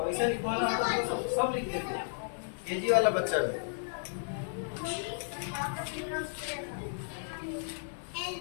ऐसे लिखवाना मतलब सब लिख देते हैं, केजी वाला बच्चा भी।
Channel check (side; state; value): right; silent; digital silence